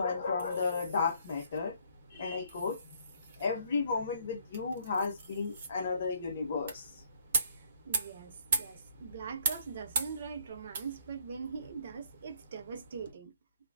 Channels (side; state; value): both; inverted; correlation -0.66